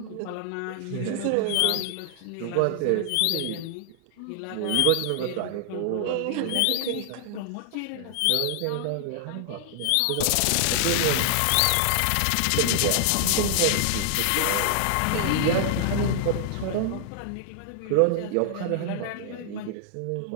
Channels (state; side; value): different; both; correlation 0.00